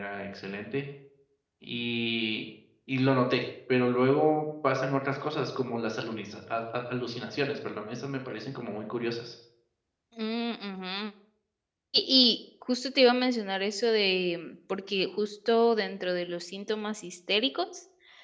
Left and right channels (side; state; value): both; identical; correlation 1.00